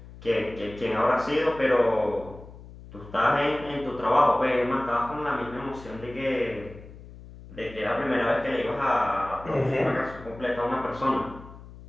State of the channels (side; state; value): left; noise; hum, 17 dB below the sound